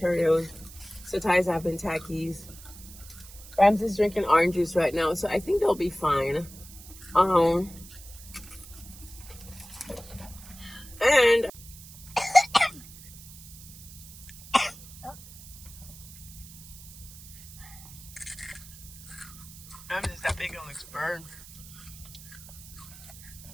Setai's having Takis. Ramses drinking orange juice right now, so I think they'll be fine. And Ramses, that big one looks burned.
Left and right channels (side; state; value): right; noise; hiss, 17 dB below the sound